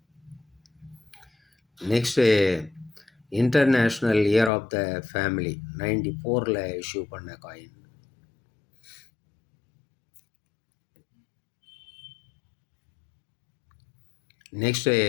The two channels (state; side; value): drops out; right; at 4.5 s